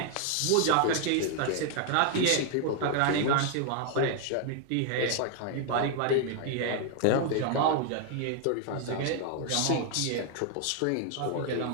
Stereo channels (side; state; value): both; different; correlation 0.00